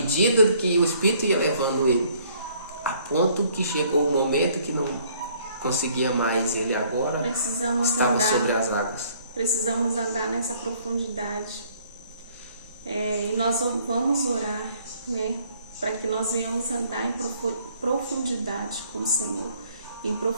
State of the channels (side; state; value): both; inverted; correlation -0.61